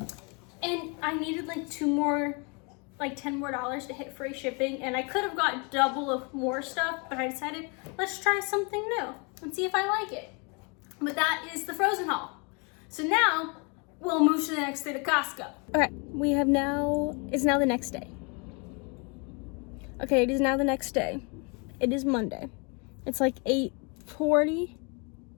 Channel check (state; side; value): quieter; right; 32.9 dB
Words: And I needed like 2 more, like $10 more to hit free shipping. And I could have got double of more stuff, but I decided, let's try something new and see if I like it. But that is the frozen haul. So now we'll move to the next day to Costco. Okay, it's now the next day. Okay, it is now the next day. It is Monday. It's like